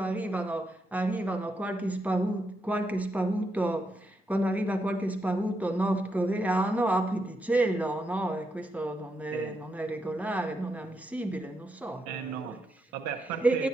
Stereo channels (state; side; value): normal; both; correlation 0.82